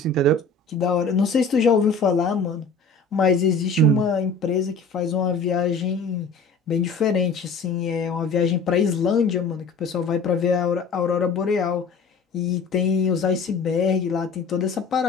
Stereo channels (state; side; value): quieter; right; 4.0 dB